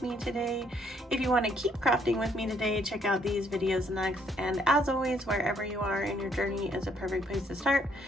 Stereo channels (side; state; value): both; normal; correlation 0.68